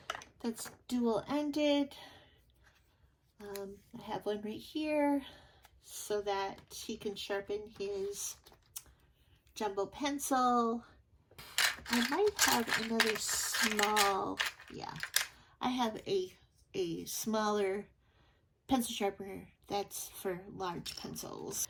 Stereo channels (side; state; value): both; identical; correlation 1.00